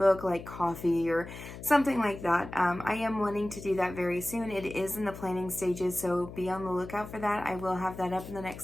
like coffee or something like that. I am wanting to do that very soon. It is in the planning stages, so be on the lookout for that. I will have that up in the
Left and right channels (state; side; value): noise; left; hum, 12 dB below the sound